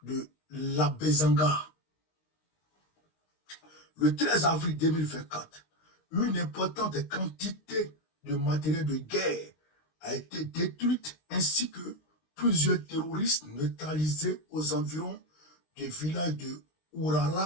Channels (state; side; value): late; right; 19 ms